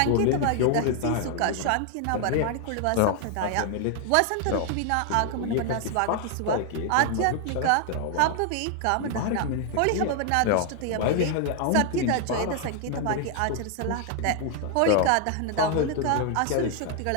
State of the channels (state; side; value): different; both; correlation 0.00